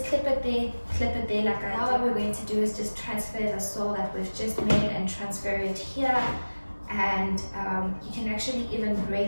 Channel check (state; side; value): inverted; both; correlation -1.00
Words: clip it there like I did. Now what we're going to do is just transfer the soil that we've just made and transfer it here. And you can actually even